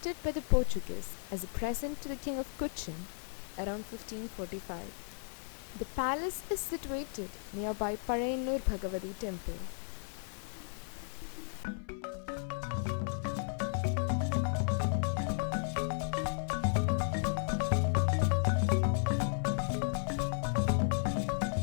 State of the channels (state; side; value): silent; right; 55 dB below the other